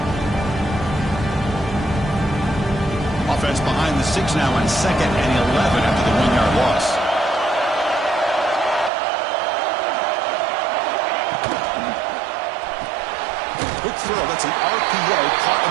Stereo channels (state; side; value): drops out; left; at 8.9 s